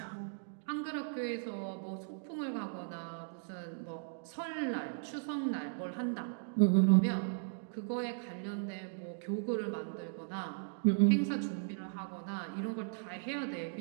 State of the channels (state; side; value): silent; left; digital silence